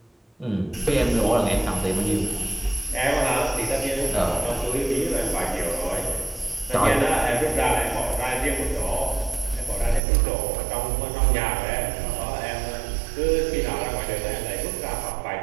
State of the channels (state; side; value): drops out; left; at 10.0 s